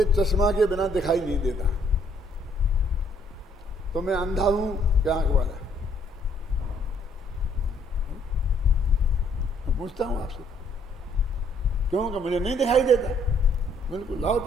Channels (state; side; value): normal; both; correlation 0.66